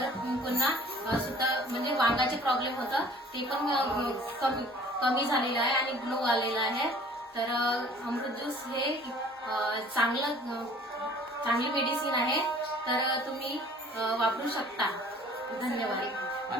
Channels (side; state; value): both; normal; correlation 0.52